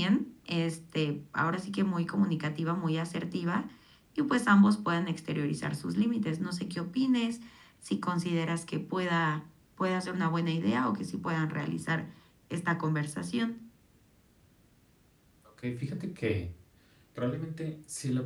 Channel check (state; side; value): identical; both; correlation 1.00